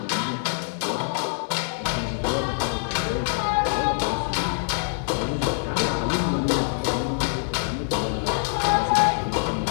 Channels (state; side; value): silent; right; 62 dB below the other